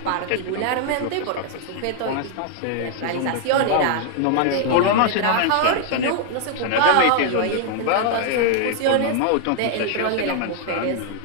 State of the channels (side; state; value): both; different; correlation 0.00